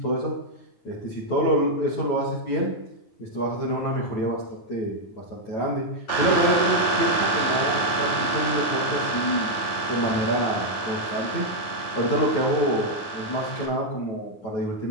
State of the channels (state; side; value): late; right; 8.7 ms